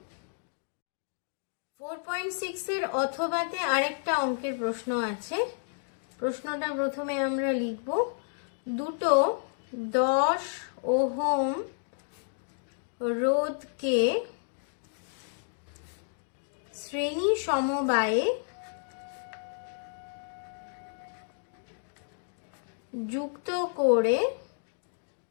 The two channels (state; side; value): silent; right; digital silence